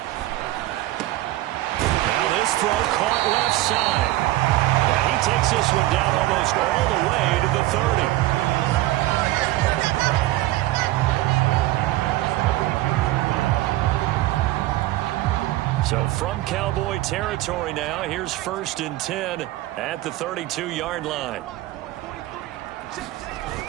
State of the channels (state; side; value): quieter; left; 16.6 dB